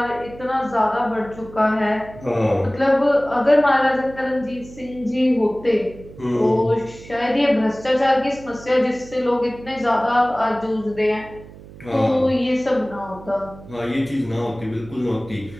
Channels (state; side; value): noise; right; hum, 18 dB below the sound